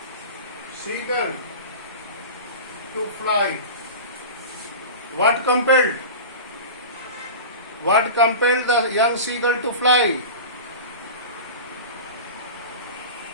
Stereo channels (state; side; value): inverted; both; correlation -0.31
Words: to fly? What compelled the young seagull to fly?